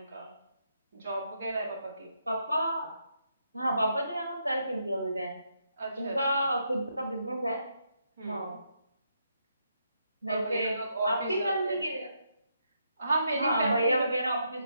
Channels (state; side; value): inverted; both; correlation -0.79